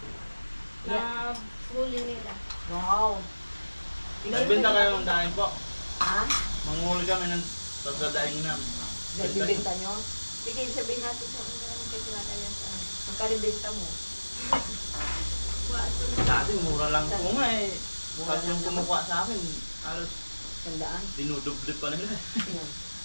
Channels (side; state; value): both; inverted; correlation -1.00